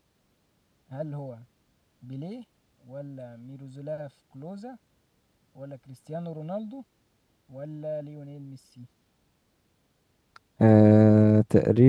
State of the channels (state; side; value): identical; both; correlation 1.00